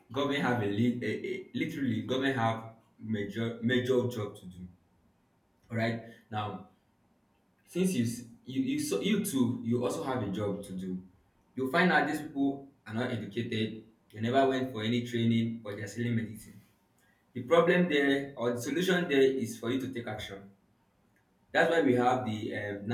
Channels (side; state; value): both; identical; correlation 1.00